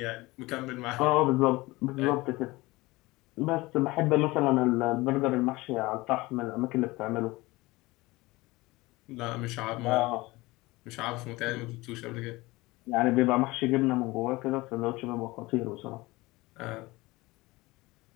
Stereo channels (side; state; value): right; quieter; 21.1 dB